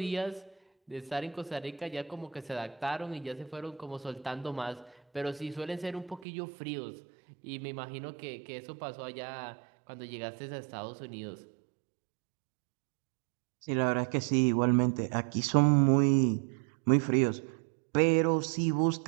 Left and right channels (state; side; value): drops out; left; at 6.2 s